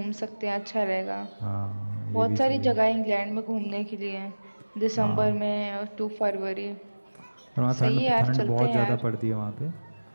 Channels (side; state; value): both; inverted; correlation -1.00